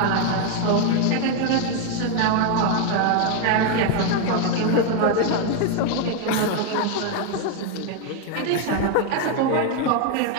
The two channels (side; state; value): both; different; correlation 0.01